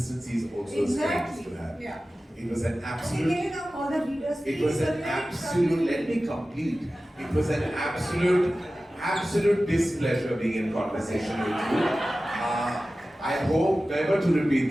is also a strength to have. Yeah. It was an absolute. All the readers, it was an absolute. Let me complete. It was an absolute displeasure being in conversation with you. I hope never to repeat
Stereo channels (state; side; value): normal; both; correlation 0.95